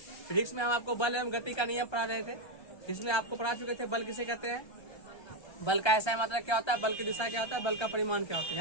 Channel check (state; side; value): late; right; 1.3 ms